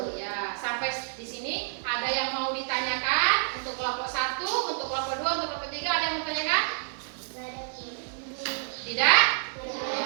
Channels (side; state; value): left; silent; 59 dB below the other